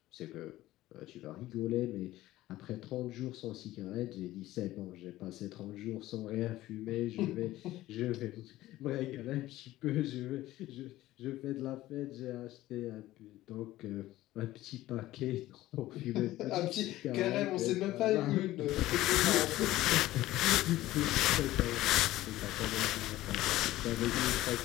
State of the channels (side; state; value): right; quieter; 16.0 dB